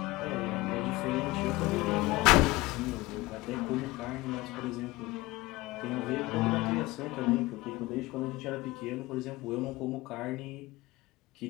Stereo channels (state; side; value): quieter; right; 20.3 dB